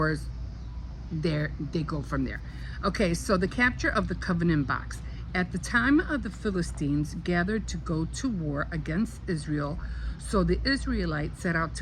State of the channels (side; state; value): both; identical; correlation 1.00